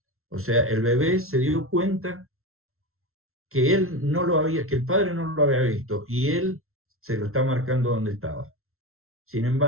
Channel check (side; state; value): left; late; 0.62 ms